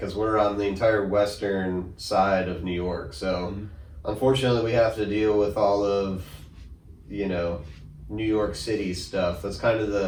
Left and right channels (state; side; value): identical; both; correlation 1.00